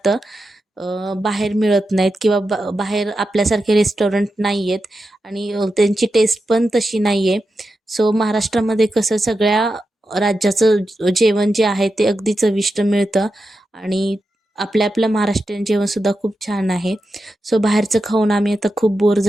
बाहेर मिळत नाहीत किंवा बाहेर आपल्यासारखे रेस्टॉरंट नाही आहेत आणि त्यांची टेस्ट पण तशी नाही आहे. सो महाराष्ट्रामध्ये कसं सगळ्या राज्याचं जेवण जे आहे ते अगदी चविष्ट मिळतं आणि आपल्या आपलं महाराष्ट्रीयन जेवणसुद्धा खूप छान आहे. सो बाहेरचं खाऊन आम्ही आता खूप बोर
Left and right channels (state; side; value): normal; both; correlation 0.89